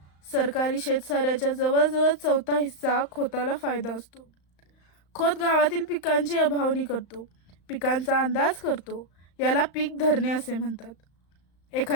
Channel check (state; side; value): late; right; 35 ms